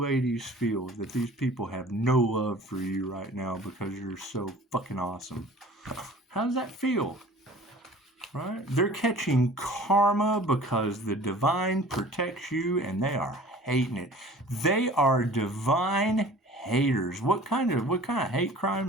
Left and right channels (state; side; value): normal; both; correlation 0.45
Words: ladies feel that these people have no love for you right now because you're so fucking awesome? How does that feel? Right? They're catching karma because the divine protects you and they are hating it. They are divine haters. What kind of hate crime